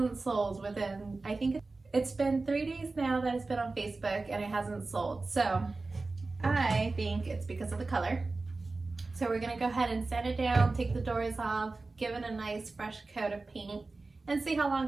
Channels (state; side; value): quieter; left; 3.5 dB